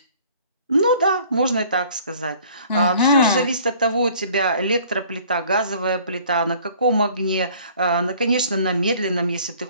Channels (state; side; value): inverted; both; correlation -0.53